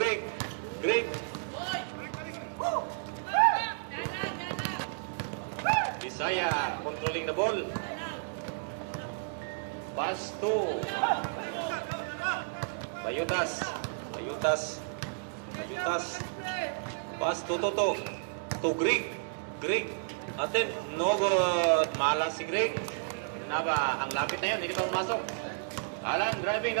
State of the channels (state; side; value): silent; left; digital silence